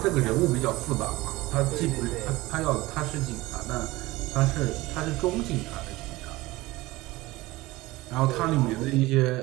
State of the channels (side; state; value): left; quieter; 19.6 dB